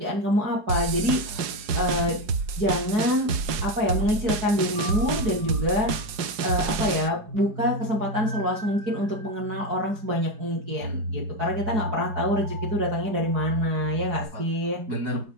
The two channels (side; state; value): left; late; 4.8 ms